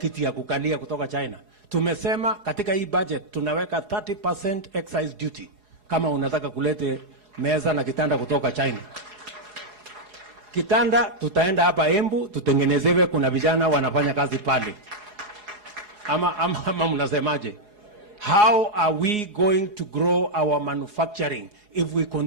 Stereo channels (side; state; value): left; late; 4.8 ms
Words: ya kukalia kutoka China. Tumesema katika hii budget tunaweka 30% excise duty kama unataka kulete meza na kitanda kutoka China. Kitanda tutaenda hapa Embu tutengenezewe, kuna vijana wanafanya kazi pale. Ama mnasemaje? How are we going to grow our manufacturing if we